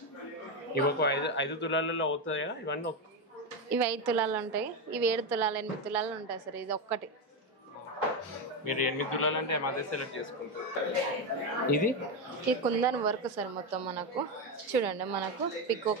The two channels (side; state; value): both; normal; correlation 0.11